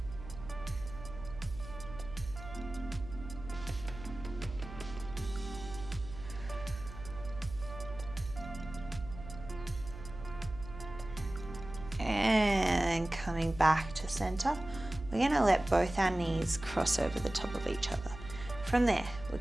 coming back to center, we're going to let both our knees cross over the top of each other. From there, we're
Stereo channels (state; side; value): noise; right; hum, 13 dB below the sound